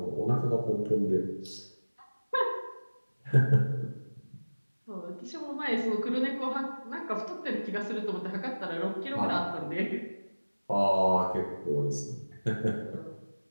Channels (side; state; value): both; inverted; correlation -1.00